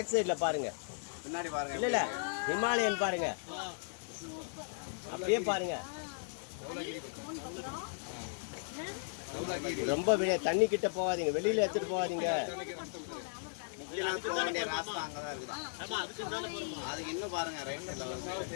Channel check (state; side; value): silent; right; 54 dB below the other